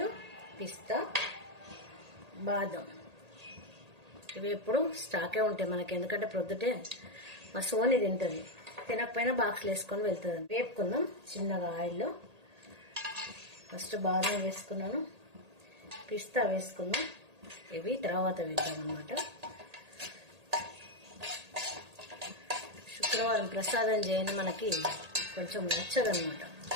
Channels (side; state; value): left; late; 1.8 ms